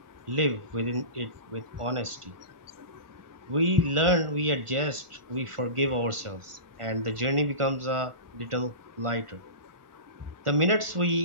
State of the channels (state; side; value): late; left; 1.4 ms